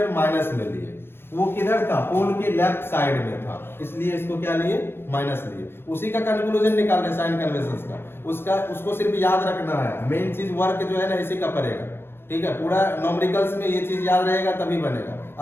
minus में लिए, वो किधर था, पोल के लेफ्ट साइड में था, इसलिए इसको क्या लिए, माइनस लिए। उसी का कंक्लूजन निकाल रहे साइन कन्वेंशंस का, उसको सिर्फ याद रखना है। मेन चीज वर्क जो है ना इसी का पड़ेगा। ठीक है, पूरा न्यूमेरिकल्स में ये चीज याद रहेगा तभी बनेगा,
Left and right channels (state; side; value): late; right; 0.11 ms